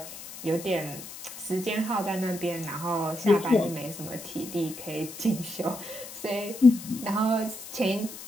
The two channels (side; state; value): left; noise; hiss, 13 dB below the sound